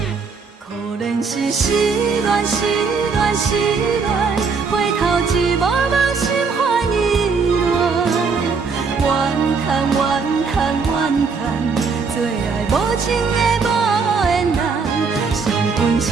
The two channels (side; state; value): left; quieter; 5.0 dB